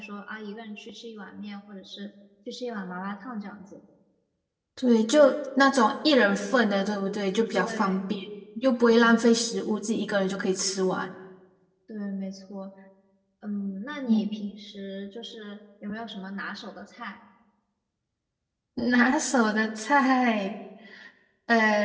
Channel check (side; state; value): both; identical; correlation 1.00